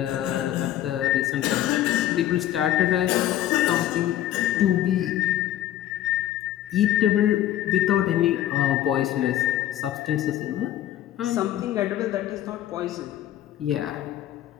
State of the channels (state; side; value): quieter; right; 12.4 dB